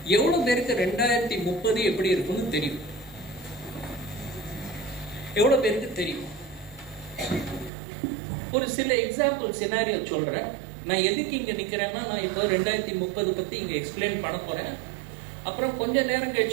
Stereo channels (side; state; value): left; drops out; at 7.7 s